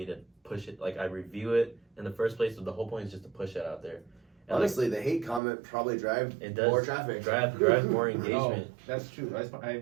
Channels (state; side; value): drops out; left; at 5.4 s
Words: to push it. Like I review it in the first place, so the whole point is just to push it out there. And honestly, the hate comment probably drives more traffic. Drives more engagement. Oh, that's true.